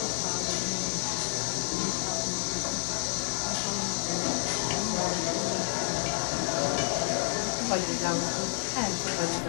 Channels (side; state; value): right; silent; digital silence